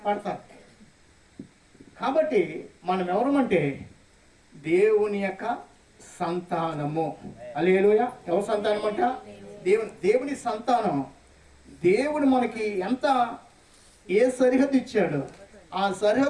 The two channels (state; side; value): identical; both; correlation 1.00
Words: పడతారు. కాబట్టి మనం ఎవరమంటే దేవుని యొక్క సంతానము. హల్లెలూయా. ఎవరి సంతానం అంట, దేవుని సంతానం. దేవుడు మనకి ఎంత ఏ సరిహద్దు ఇచ్చాడు, ఆ